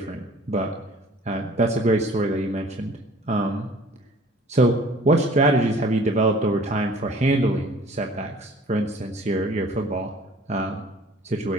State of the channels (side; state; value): both; normal; correlation 0.50